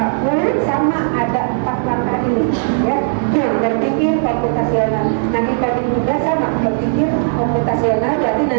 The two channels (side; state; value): left; silent; 69 dB below the other